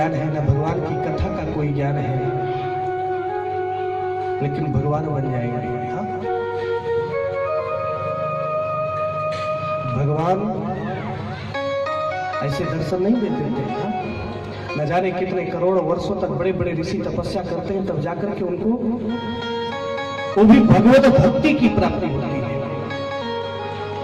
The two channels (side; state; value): both; identical; correlation 1.00